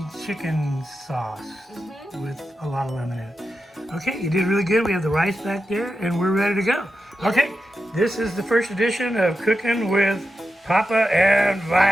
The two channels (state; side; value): normal; both; correlation 0.90